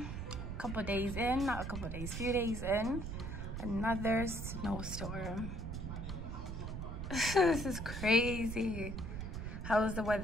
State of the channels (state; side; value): noise; right; rumble, 5 dB below the sound